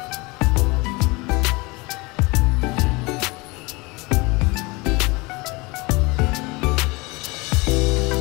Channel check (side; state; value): right; quieter; 25.3 dB